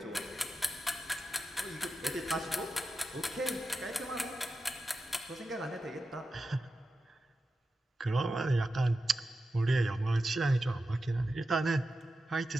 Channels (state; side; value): normal; both; correlation 0.91